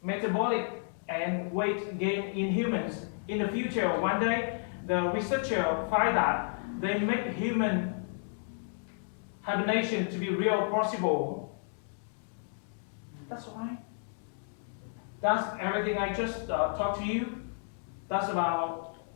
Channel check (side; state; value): right; silent; digital silence